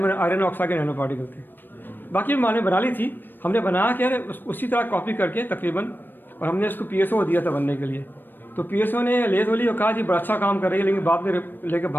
ऑक्साइड के नैनो पार्टिकल थे. बाकी माने बना ली थी, हमने बना के उसी तरह कॉपी करके तकरीबन, और हमने उसको PSO दिया था बनने के लिए. तो PSO ने लेज बोली और कहा जी बड़ा अच्छा काम कर रही है, लेकिन बाद में लेके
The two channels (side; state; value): right; late; 0.094 ms